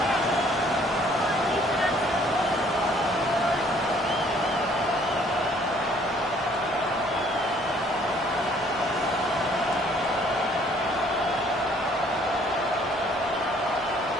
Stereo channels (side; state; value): both; normal; correlation 0.60